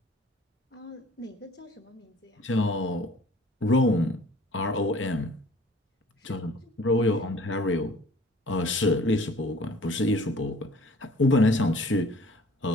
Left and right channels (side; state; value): both; normal; correlation 0.51